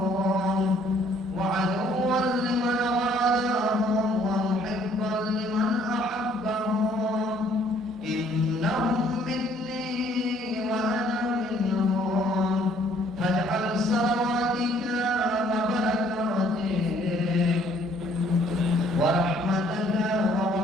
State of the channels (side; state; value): both; normal; correlation 0.62